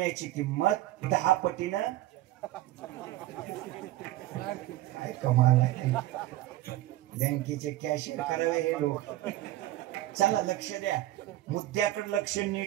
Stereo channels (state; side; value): quieter; left; 15.5 dB